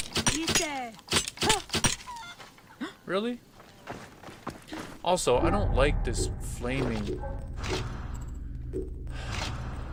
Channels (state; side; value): identical; both; correlation 1.00